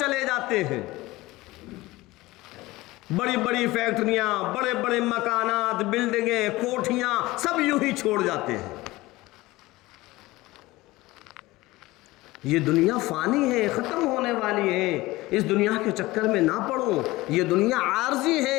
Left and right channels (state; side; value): quieter; right; 19.5 dB